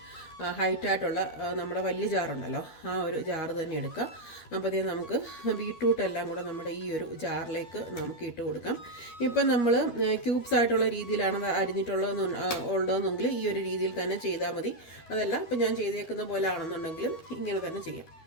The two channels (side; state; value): right; late; 13 ms